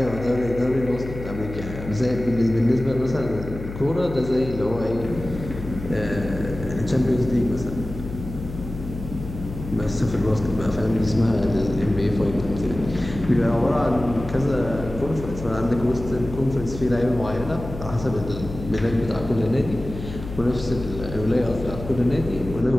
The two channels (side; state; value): left; noise; hum, 10 dB below the sound